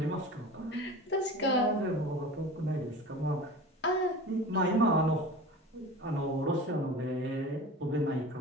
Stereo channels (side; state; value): both; normal; correlation 0.35